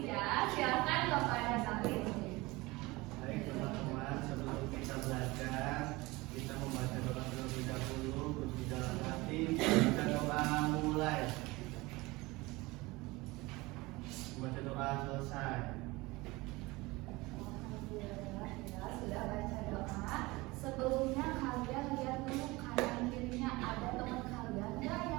ya. Silakan kepada Maris. Baik teman-teman, sebelum kita belajar, kita membaca doa terlebih dahulu, berdoa dalam hati. Kita doa mulai. Baca doa selesai. Alhamdulillah ya, sudah baca doa. Sebelumnya kalian lihat dulu kanan kirinya ada teman kalian nggak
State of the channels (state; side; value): quieter; left; 22.1 dB